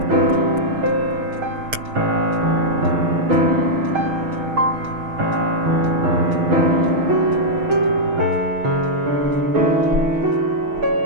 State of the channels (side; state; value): left; late; 6.3 ms